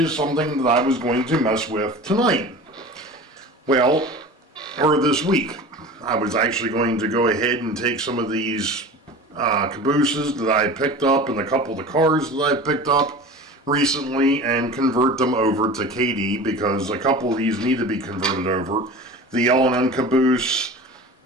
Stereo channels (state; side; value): normal; both; correlation 0.36